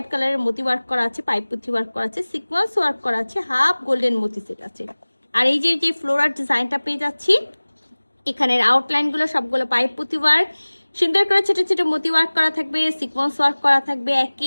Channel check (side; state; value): both; inverted; correlation -1.00